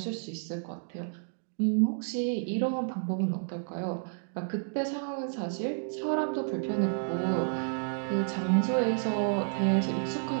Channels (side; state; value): left; silent; digital silence